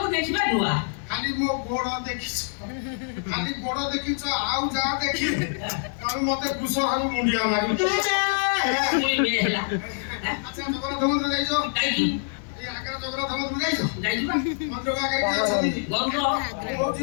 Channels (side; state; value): right; silent; digital silence